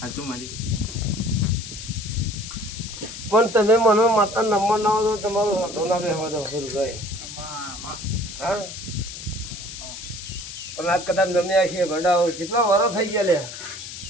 સાચું મારી પણ તમે મને માતા નંબર ના દો તમારું હાથો ના બેસવા દો ખરું ગઈ હા પણ આજ કદાચ જમ્યા છીએ ગઢાઓ કેટલા વર્ષ થઈ ગયા લે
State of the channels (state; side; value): noise; left; hiss, 10 dB below the sound